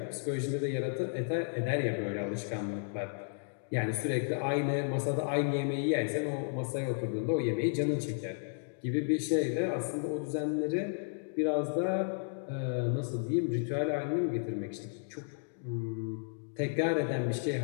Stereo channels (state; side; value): silent; right; digital silence